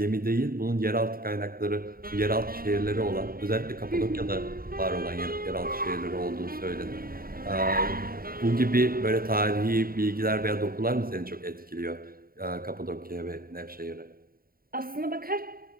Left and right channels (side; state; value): left; late; 0.43 ms